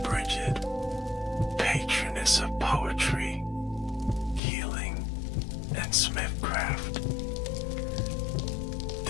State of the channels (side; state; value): right; drops out; at 4.4 s